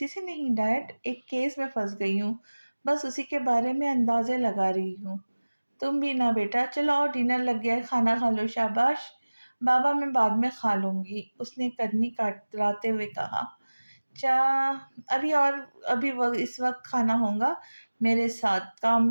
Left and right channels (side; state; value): both; inverted; correlation -1.00